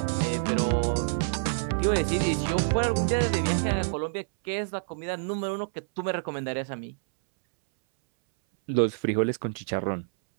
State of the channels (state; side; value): silent; left; 60 dB below the other